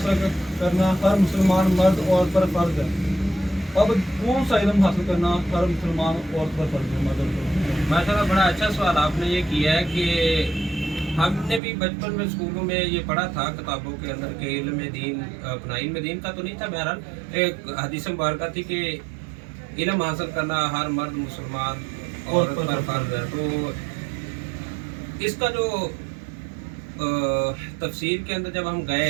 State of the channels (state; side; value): drops out; left; at 11.6 s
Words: کرنا ہر مسلمان مرد عورت پر فرض ہے۔ اب کون سا علم حاصل کرنا ہر مسلمان عورت پر فرض ہے؟ ماشاء اللہ، بڑا اچھا سوال آپ نے یہ کیا ہے کہ ہم نے بھی بچپن میں اسکولوں میں یہ پڑھا تھا کتابوں کے اندر کہ علم دین، اپنا علم دین کا تو نہیں تھا، بہرحال ایک حدیث مبارکہ تھی کہ علم حاصل کرنا ہر مرد مسلمان عورت پر فرض ہے۔ تو اس کا جو تفسیر کے اندر جب ہم